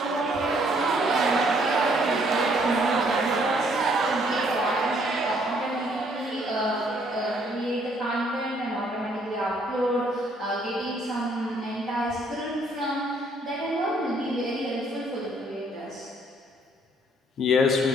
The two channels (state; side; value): normal; both; correlation 0.65